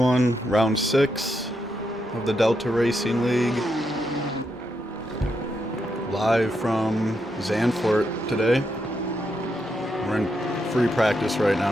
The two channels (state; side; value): normal; both; correlation 0.82